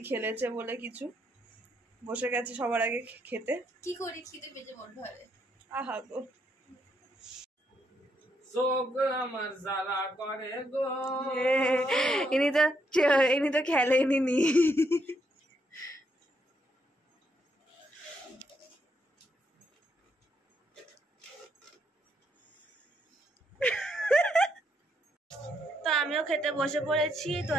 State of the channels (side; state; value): both; normal; correlation 0.76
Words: খেলেছে বলে কিছু। বসে গেছে সবার আগে খেতে। কি করি, খিদে পেটে বন্ধ হবে। আহা গো, চোখ আমার জ্বালা করে গো। ইনি তো খেলেনি নি। তো আমিও খেতে বসে পড়েছি। তো